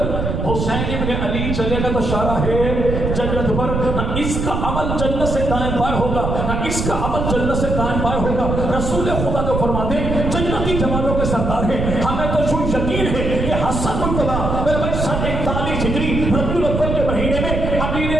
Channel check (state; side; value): noise; right; rumble, 2 dB below the sound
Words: حسین ابن علی چلے گا تو شاہراہ جنت پر. نہ اس کا عمل جنت سے دائیں بائیں ہوگا، نہ اس کا عمل جنت سے دائیں بائیں ہوگا. رسول خدا جو فرماتے ہیں جنتی جوانوں کے سردار ہیں. ہمیں تو جو یقین ہے کہ حسن مرتبہ میرے بھائی 41 ہجری ربیع الاول کے مہینے میں